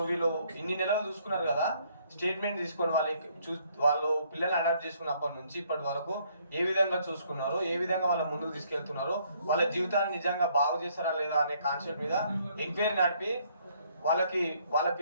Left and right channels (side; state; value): both; inverted; correlation -0.66